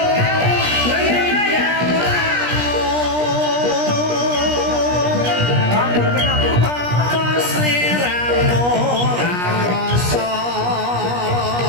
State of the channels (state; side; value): late; left; 17 ms